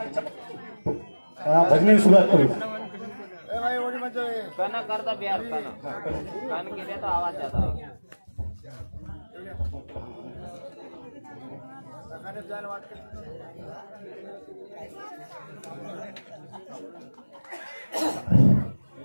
भजने सुरुवात करू गाना करता बिहार गान केले तो आवाज जाता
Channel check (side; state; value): both; inverted; correlation -1.00